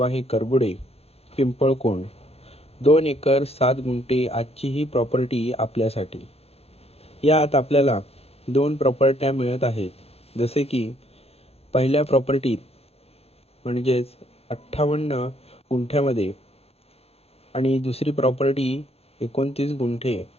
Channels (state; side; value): late; right; 0.29 ms